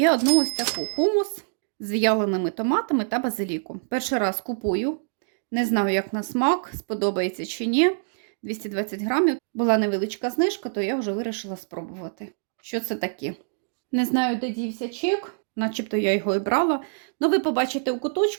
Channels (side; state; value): left; silent; digital silence